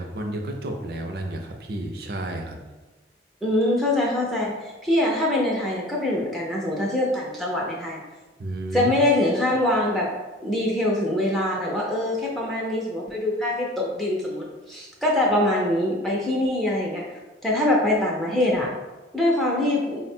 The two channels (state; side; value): normal; both; correlation 0.42